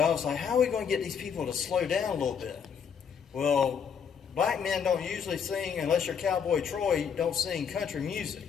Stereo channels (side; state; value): right; quieter; 7.1 dB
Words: was like, how are we going to get these people to slow down a little bit? Well, black men don't usually sing, unless you're Cowboy Troy, don't sing country music.